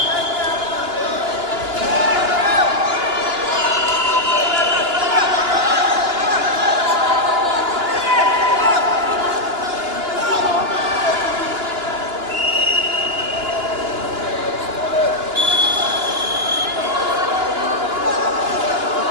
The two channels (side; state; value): left; late; 2.9 ms